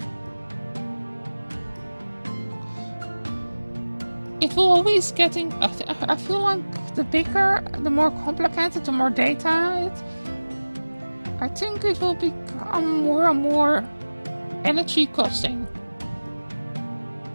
it will always getting. I feel like the bigger, the more complicated, the more data I think it will become more and more energy costing.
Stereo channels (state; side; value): inverted; both; correlation -1.00